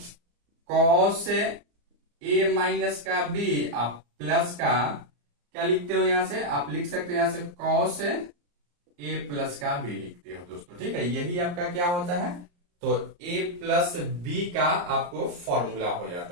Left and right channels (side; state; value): left; late; 34 ms